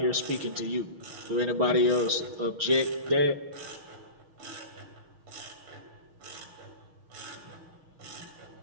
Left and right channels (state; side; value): late; left; 6.4 ms